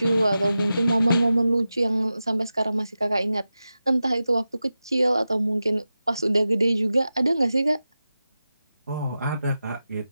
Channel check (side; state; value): both; inverted; correlation -0.93